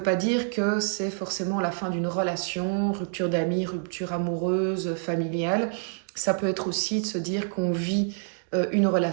pas dire que c'est forcément la fin d'une relation, rupture d'amis, rupture amoureuse, familiale. Ça peut être aussi de se dire qu'on vit une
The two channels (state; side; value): silent; left; 60 dB below the other